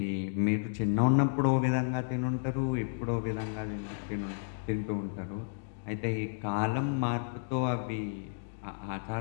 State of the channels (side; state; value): right; silent; digital silence